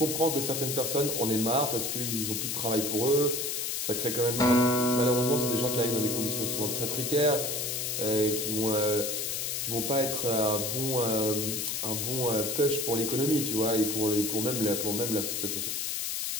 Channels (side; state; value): left; noise; hiss, 1 dB below the sound